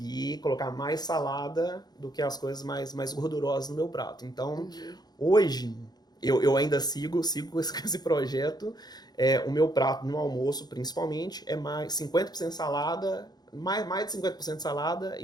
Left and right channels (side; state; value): right; late; 0.19 ms